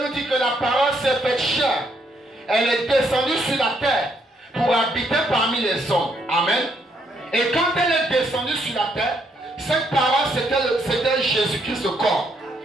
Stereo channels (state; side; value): normal; both; correlation 0.73